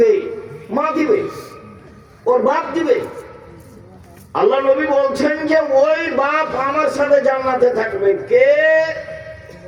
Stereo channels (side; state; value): both; identical; correlation 1.00